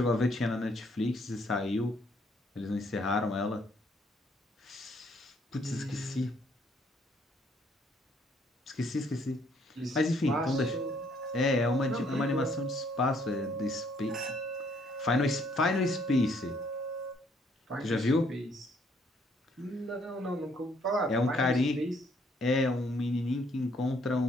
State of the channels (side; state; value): both; normal; correlation 0.66